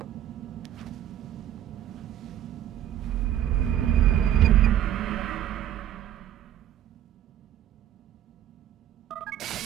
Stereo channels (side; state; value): left; quieter; 11.3 dB